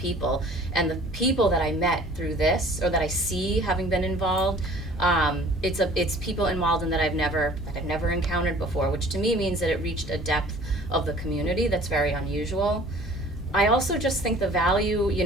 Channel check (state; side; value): normal; both; correlation 0.49